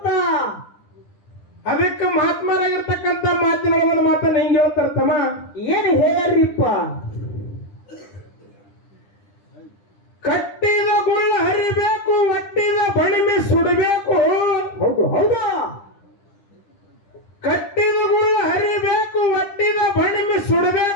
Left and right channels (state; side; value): late; right; 10 ms